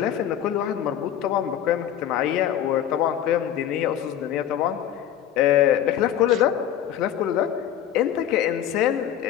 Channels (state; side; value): quieter; right; 10.5 dB